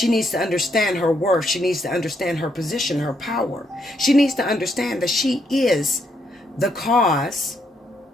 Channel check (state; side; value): normal; both; correlation 0.76